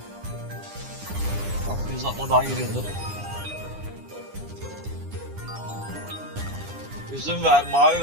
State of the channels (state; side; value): late; left; 9.9 ms